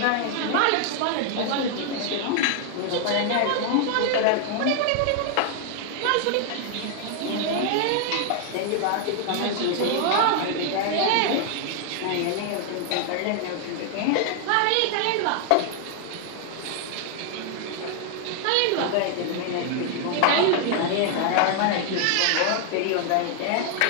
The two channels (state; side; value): different; both; correlation 0.00